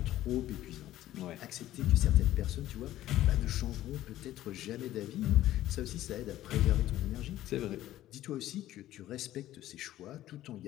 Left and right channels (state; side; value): quieter; right; 14.1 dB